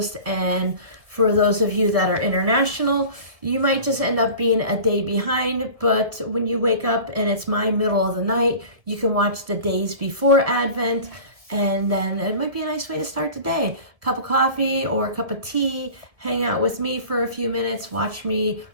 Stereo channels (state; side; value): late; left; 1.7 ms